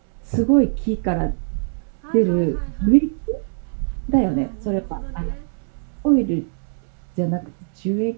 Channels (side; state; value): left; silent; 64 dB below the other